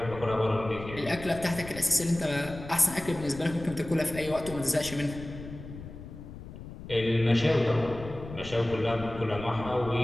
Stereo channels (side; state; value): left; noise; rumble, 13 dB below the sound